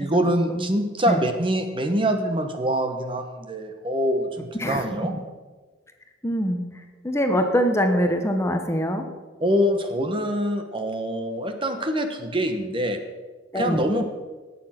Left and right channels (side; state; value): both; normal; correlation 0.56